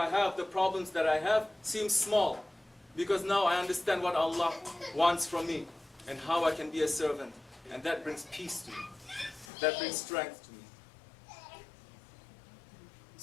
have, the problems that I have, seem small, because now I understand what Allah wants from me and how I can be a servant, and that brings peace to me. That brings strength to me.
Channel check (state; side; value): drops out; right; at 9.5 s